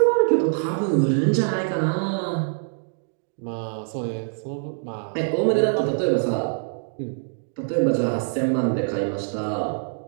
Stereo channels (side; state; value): left; silent; digital silence